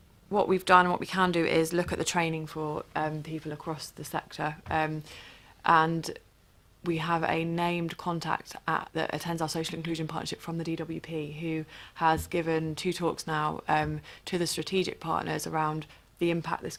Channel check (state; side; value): identical; both; correlation 1.00